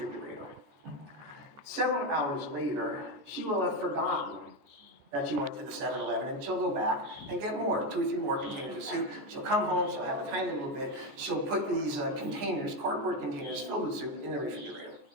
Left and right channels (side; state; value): left; late; 14 ms